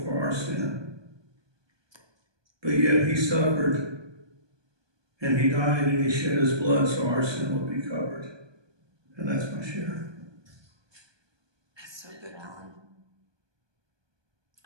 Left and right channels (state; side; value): late; left; 1.2 ms